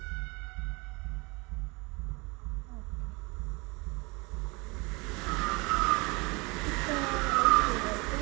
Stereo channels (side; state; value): left; quieter; 26.7 dB